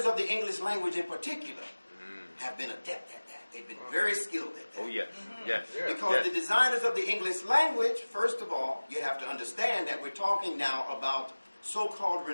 of the English language in particular have been adept at that. They've been very skilled at that. Oh, yes. Yes. Because yes. the designers of the English language, first of all, you have to understand that we're talking now about so-called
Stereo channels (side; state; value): both; inverted; correlation -1.00